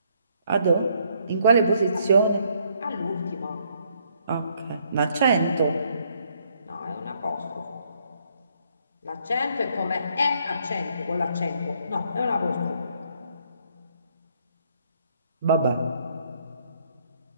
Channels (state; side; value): inverted; both; correlation -0.69